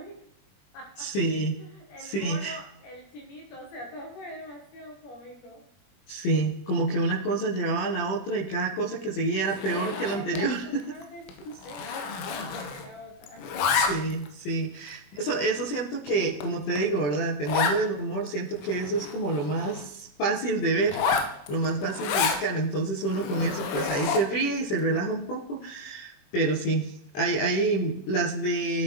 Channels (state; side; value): late; right; 21 ms